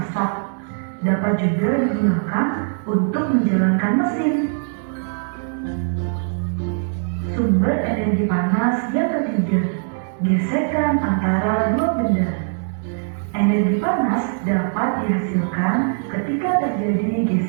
dapat juga digunakan untuk menjalankan mesin. Sumber energi panas yang ketiga, gesekan antara dua benda. Energi panas dapat dihasilkan ketika terjadi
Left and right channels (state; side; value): silent; left; 65 dB below the other